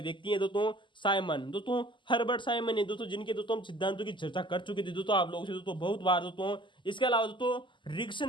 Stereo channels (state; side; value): late; right; 0.24 ms